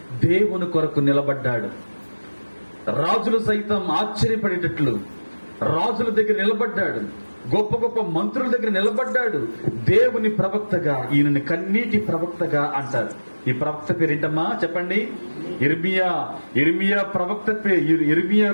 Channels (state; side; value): inverted; both; correlation -1.00